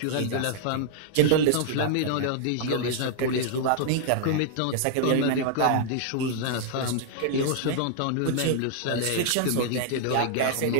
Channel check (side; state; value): both; different; correlation -0.01